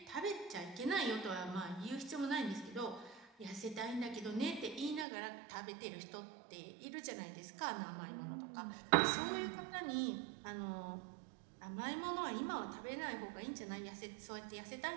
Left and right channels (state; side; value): drops out; left; at 5.1 s